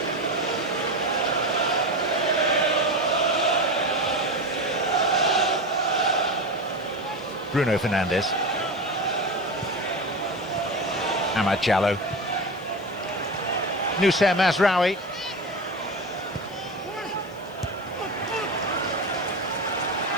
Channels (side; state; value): left; noise; hiss, 27 dB below the sound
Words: Bruno Fernandes. Amad Jallo. Noussair Mazraoui.